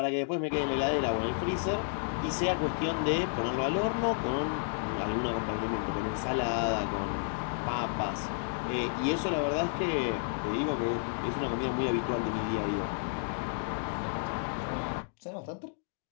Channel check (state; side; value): silent; right; digital silence